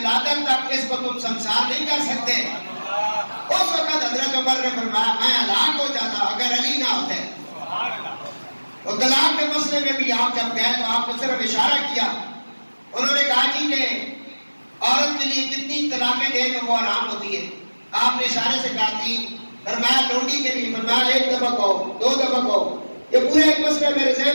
تک اس کو تم سنسار نہیں کر سکتے۔ اس وقت حضرت عمر نے فرمایا میں ہلاک ہو جاتا اگر علی نہ ہوتے۔ اور طلاق کے مسئلے میں بھی آپ جب گئے تو آپ نے صرف اشارہ کیا، انہوں نے کہا جی کہ عورت کے لیے کتنی طلاقیں دے تو وہ آرام ہوتی ہے، آپ نے اشارے سے کہا تھی، فرمایا لونڈی کے لیے، فرمایا ایک دفعہ کہو، دو دفعہ کہو، یہ پورا ایک مسئلہ میرے ذہن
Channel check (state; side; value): inverted; both; correlation -1.00